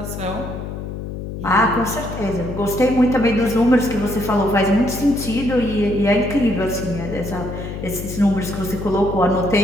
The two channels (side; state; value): left; noise; hum, 7 dB below the sound